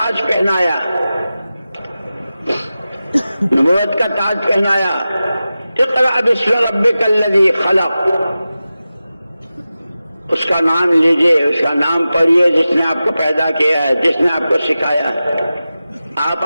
پہنایا، نبوت کا تاج پہنایا۔ اقرأ باسم ربک الذی خلق، اس کا نام لیجئے، اس کا نام پڑھیے جس نے آپ کو پیدا کیا ہے، جس نے آپ کو سکھایا۔ آپ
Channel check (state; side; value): inverted; both; correlation -0.94